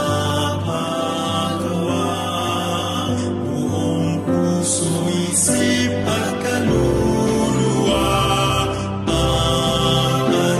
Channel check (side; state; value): both; identical; correlation 1.00